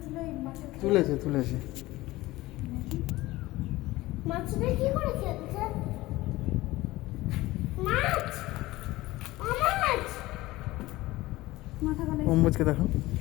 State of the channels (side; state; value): right; quieter; 18.6 dB